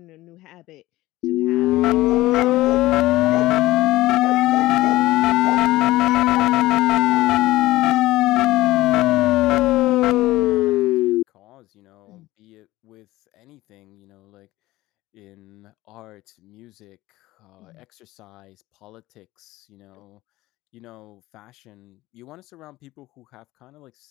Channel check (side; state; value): right; quieter; 17.7 dB